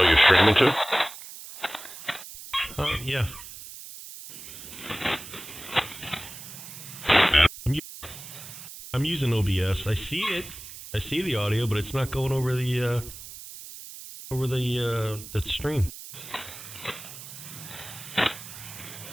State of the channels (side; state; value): right; noise; hiss, 13 dB below the sound